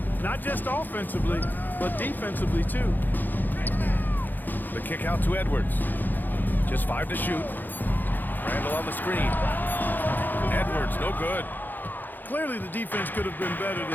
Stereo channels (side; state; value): right; late; 0.088 ms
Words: not just offensively, but defensively, too. The kick out to Edwards. Just 5 to shoot. Randall on the screen. Edwards, no good. Clearly, the defense could have been better